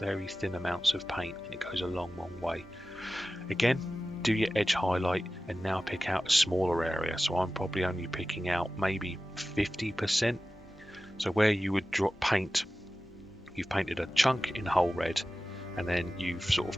amounts of paint, and it goes a long way. Again, do your edge highlight and now pick out a smaller area. So I'm probably only picking out maybe 50%. So where you would paint, you've painted a chunk in whole red, and then you've sort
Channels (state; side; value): normal; both; correlation 0.95